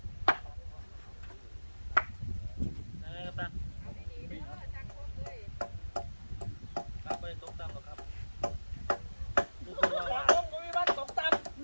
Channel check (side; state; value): both; inverted; correlation -1.00